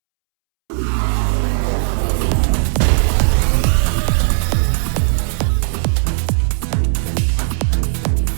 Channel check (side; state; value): left; silent; 69 dB below the other